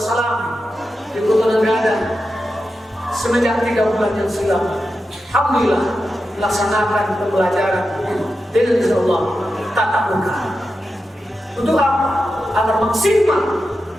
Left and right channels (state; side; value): normal; both; correlation 0.90